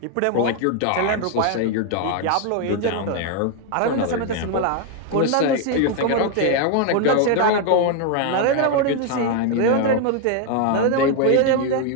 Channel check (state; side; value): different; both; correlation 0.01